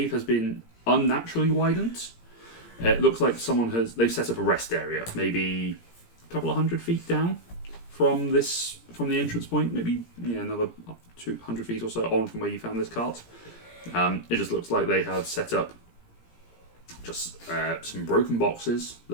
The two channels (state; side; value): late; right; 17 ms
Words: has been unnaturally widened. It looks like they've set up a rest area, maybe a couple of 100 feet down from the entrance point, maybe another 200 feet or so on from where you found this cart. It just looks like they have set up just some broken boxes